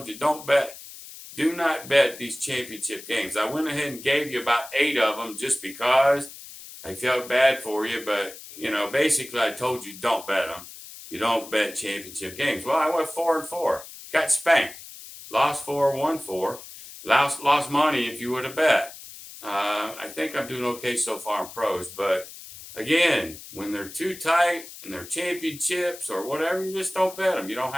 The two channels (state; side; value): noise; left; hiss, 15 dB below the sound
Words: you, do not bet these championship games. I went ahead and gave you about 8 of them just because I felt bad for you, but, basically I told you don't bet them. You don't bet championship games. Well, I went 4-4, got spanked. Lost 4, won 4. Lost money if you would have bet. I think I'm doing okay so far in pros, but again, when they're too tight and they're championships or whatever, you just don't bet them. You don't